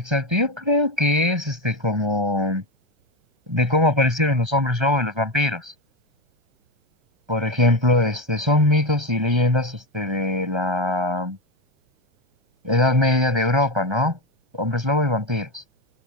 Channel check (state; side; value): late; left; 1.3 ms